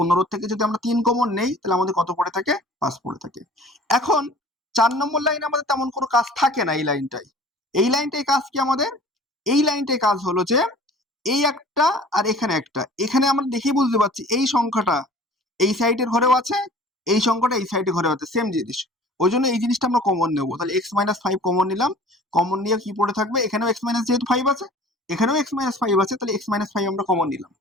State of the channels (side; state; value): both; normal; correlation 0.46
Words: থেকে যদি আমরা 3 কমন নেই তাহলে আমাদের কত পড়ে থাকে? 5 পড়ে থাকে। এখন 4 নম্বর লাইনে আমাদের তেমন কোনো কাজ থাকে না। এই লাইনটাই কাজ কি আমাদের? এই লাইনটাই কাজ হলো যে এই একটা আর এখানে একটা, এখানে আমরা দেখেই বুঝতে পারছি এই সংখ্যাটা এই সাইডের ঘরেও আছে, এই সংখ্যাটা এই সাইডের ঘরেও আছে, সেম জিনিস। ওই জন্য এই জিনিসটা আমরা কমন নেবো। তাহলে x-5 কমন নিলাম, কমন নিয়ে কি পড়ে থাকবে? এখানেও x- যেহেতু 5 আছে, এখানেও x-5 আছে, তাহলে x-5 আমরা কমন নিলাম।